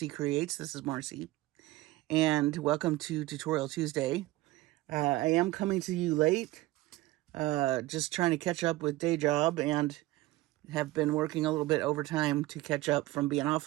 Creates. This is Marcie, and welcome to Tutorial Tuesday. I am coming to you late, just trying to catch up with day job and have been working a little bit overtime to catch up from being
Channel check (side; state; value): left; quieter; 18.2 dB